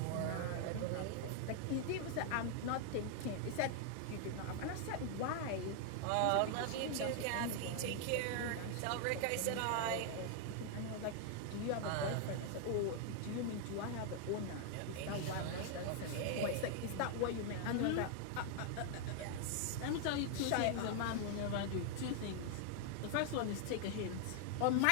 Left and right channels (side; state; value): both; different; correlation 0.00